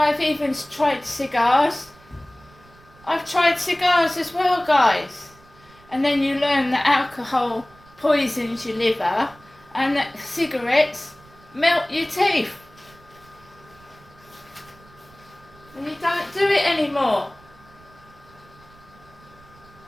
even tried cigars. I've tried cigars as well, guys. And then you learn that alcohol poisons your liver and that cigarettes melt your teeth. And you don't do it anymore.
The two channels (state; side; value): noise; right; rumble, 26 dB below the sound